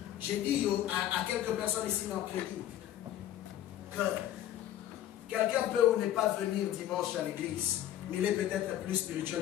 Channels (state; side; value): quieter; right; 12.1 dB